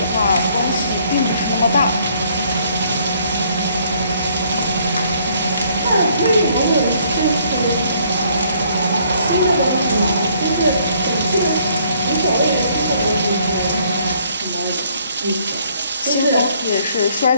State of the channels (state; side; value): inverted; both; correlation -0.64